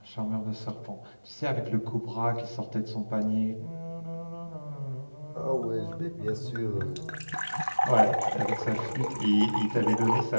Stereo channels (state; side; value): inverted; both; correlation -1.00